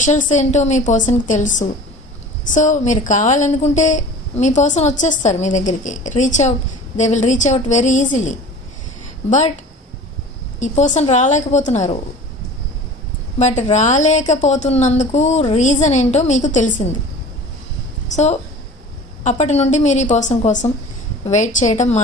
ఏంటో మీ పర్సన్కి తెలుసు. సో మీరు కావాలనుకుంటే మీ పర్సన్ వచ్చేస్తారు మీ దగ్గరికి. They will reach out very easily. But ఈ పర్సన్ రాలేకపోతున్నారు. బట్ రాలేకపోతున్నందుకు రీజన్ ఏంటో మీకు తెలిసింది. సో అప్పటి నుండి మీరు ఈ పర్సన్ కోసం వెయిట్ చేయడం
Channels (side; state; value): both; normal; correlation 0.41